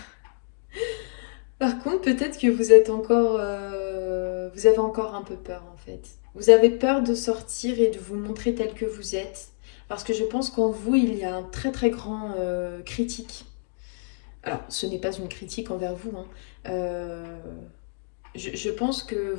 Par contre, peut-être que vous êtes encore, vous avez encore un peu peur en fait. Vous avez peur de sortir et de vous montrer tel que vous êtes. Parce que je pense qu'en vous, il y a un très très grand critique. Alors, ce n'est pas une critique envers vous, hein. Je pense que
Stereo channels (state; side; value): silent; right; digital silence